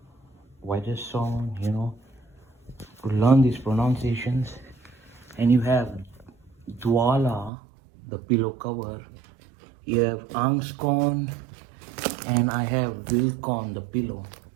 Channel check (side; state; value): left; drops out; at 7.5 s